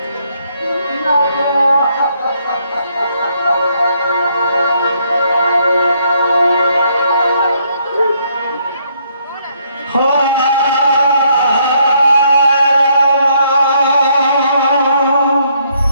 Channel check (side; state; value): both; inverted; correlation -0.70